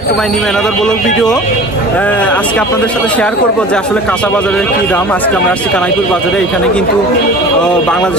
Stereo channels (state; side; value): normal; both; correlation 0.40